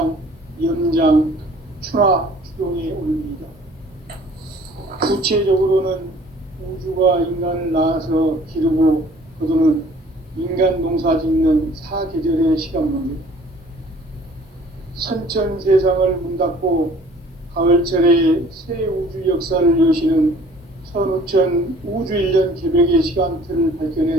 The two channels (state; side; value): normal; both; correlation 0.53